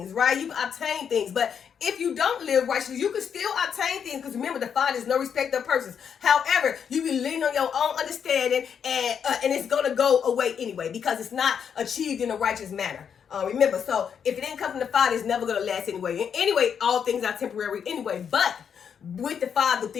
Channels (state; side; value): quieter; right; 7.5 dB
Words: right? You can obtain things. But if you don't live righteously, you can still obtain things, because remember, the Father is no respecter of persons. However, you can lean on your own understanding, and it's going to go away anyway, because it's not achieved in a righteous manner. Remember, so if it didn't come from the Father, it's never going to last anyway. And anyway, all things are temporary anyway. But with the Father,